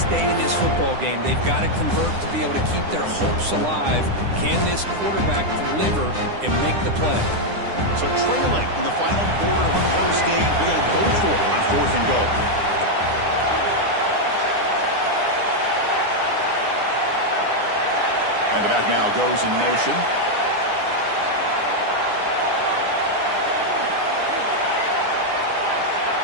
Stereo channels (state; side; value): late; left; 9.9 ms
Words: in this football game. They've got to convert to be able to keep their hopes alive. Can this quarterback deliver and make the play? So trailing in the final quarter of a close game, they're going to go for it on 4th and goal. And the back now goes in motion.